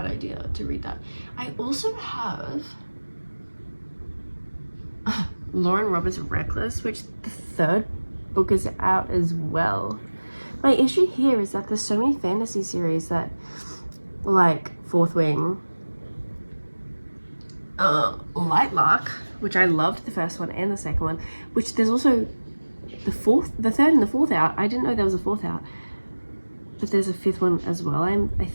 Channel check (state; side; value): inverted; both; correlation -1.00